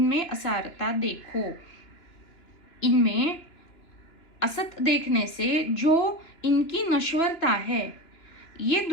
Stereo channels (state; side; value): late; right; 2.9 ms